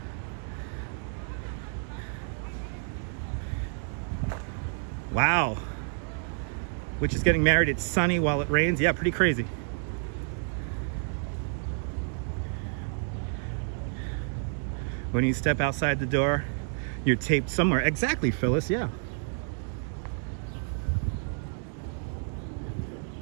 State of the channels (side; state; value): left; silent; 58 dB below the other